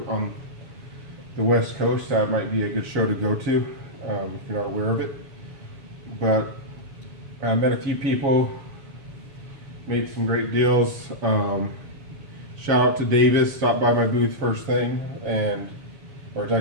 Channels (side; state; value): left; late; 7.0 ms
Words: on the West Coast, that might be a good show to go to if you're not aware of it. But I met a few people, made some great deals. Shout out to Davis, stopped by my booth first thing, or it's